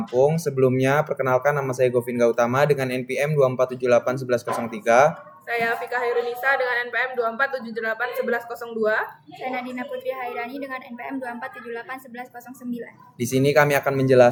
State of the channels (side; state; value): both; identical; correlation 1.00